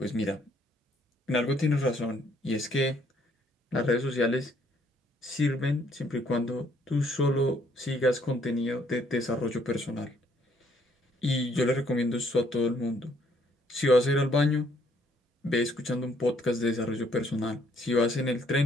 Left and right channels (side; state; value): both; normal; correlation 0.67